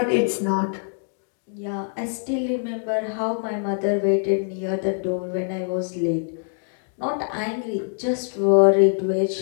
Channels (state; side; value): silent; right; 63 dB below the other